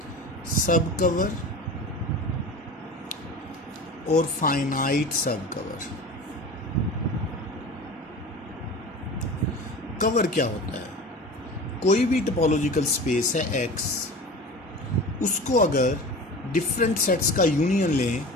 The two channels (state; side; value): normal; both; correlation 0.35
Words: सब कवर और फाइनाइट सब कवर। कवर क्या होता है? कोई भी टोपोलॉजिकल स्पेस है एक्स, उसको अगर डिफरेंट सेट्स का यूनियन लें,